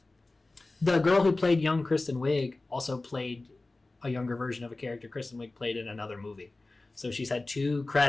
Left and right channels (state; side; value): quieter; right; 3.1 dB